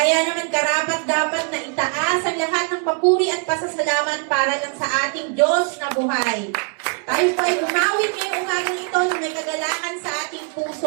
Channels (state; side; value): quieter; left; 38.2 dB